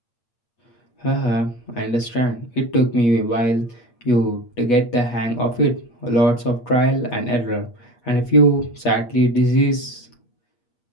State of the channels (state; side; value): late; right; 8.3 ms